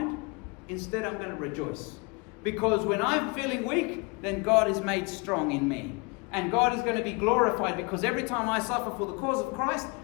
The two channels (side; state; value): right; quieter; 29.0 dB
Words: instead I'm going to rejoice. Because when I'm feeling weak, then God is made strong in me. And God is going to be glorified, because every time I suffer for the cause of Christ,